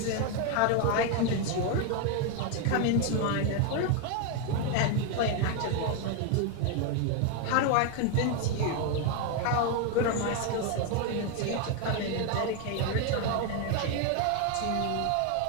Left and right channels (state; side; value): different; both; correlation 0.01